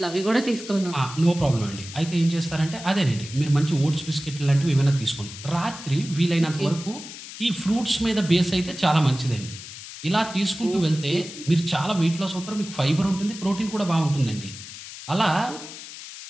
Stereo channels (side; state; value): left; noise; hiss, 13 dB below the sound